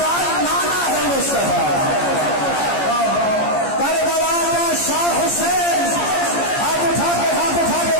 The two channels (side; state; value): right; late; 14 ms